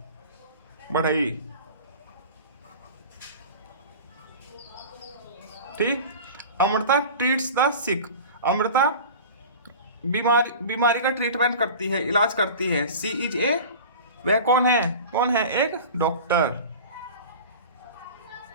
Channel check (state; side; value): inverted; both; correlation -0.36